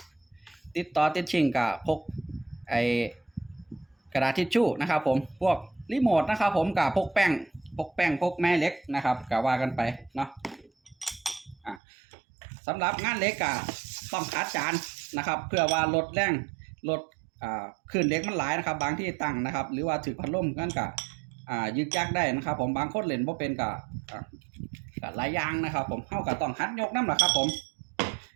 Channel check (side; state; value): left; drops out; at 11.8 s